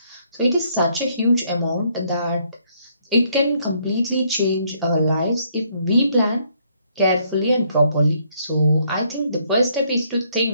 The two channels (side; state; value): both; inverted; correlation -0.69